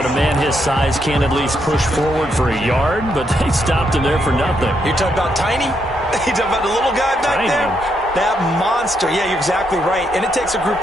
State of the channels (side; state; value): both; normal; correlation 0.78